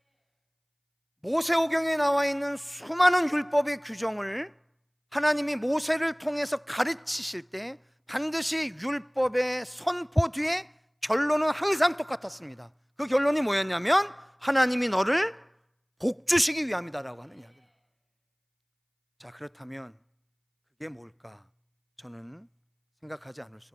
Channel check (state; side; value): identical; both; correlation 1.00